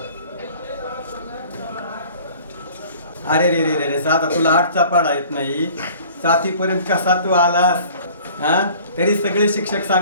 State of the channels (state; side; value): inverted; both; correlation -0.49